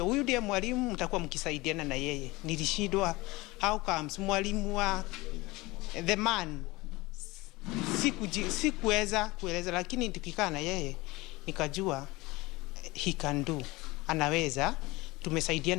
huyu ndiye mwalimu, mtakuwa mkisaidiana na yeye. Nilishindwa how comes mwalimu wa the man sikuweza kueleza, lakini tukikaa na yeye nikajua he can do, anaweza.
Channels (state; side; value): quieter; right; 21.7 dB